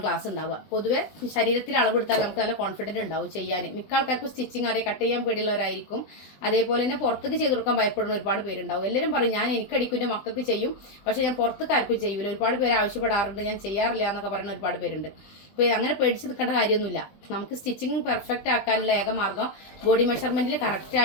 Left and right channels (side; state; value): right; late; 20 ms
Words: ക്ലാസ് ഉണ്ടാവുക. പൊതുവെ ശരീരത്തിൽ അളവെടുത്താൽ നമുക്ക് നല്ല കോൺഫിഡൻറ്റ് ഉണ്ടാവും ചെയ്യാൻ. മിക്ക ആൾക്കാർക്കും സ്റ്റിച്ചിങ് അറിയാം, കട്ട് ചെയ്യാൻ പേടിയുള്ളവരായിരിക്കും. അതേപോലെ തന്നെ പുറത്തേക്ക് ചെയ്ത് കൊടുക്കാൻ ഭയപ്പെടുന്ന ഒരുപാട് പേരുണ്ടാവും. എല്ലാവരും പറയും ഞാൻ എനിക്കടിക്കും, എൻ്റെ മക്കൾക്ക് ചെയ്യും, പക്ഷേ ഞാൻ പുറത്തേക്ക് ആർക്കും ചെയ്യൂല. ഒരുപാട് പേര് ആവശ്യപ്പെടാറുണ്ട്, ഞാൻ ചെയ്യാറില്ല എന്നൊക്കെ പറയുന്ന ഒരുപാട് പേരുണ്ട്. അപ്പോൾ അങ്ങനെ പേടിച്ച് നിൽക്കേണ്ട കാര്യമൊന്നുമില്ല. നമുക്ക് സ്റ്റിച്ചിങ് പെർഫെക്റ്റ് ആക്കാനുള്ള ഏക മാർഗ്ഗം ബോഡി മെഷർമെൻറ്റിൽ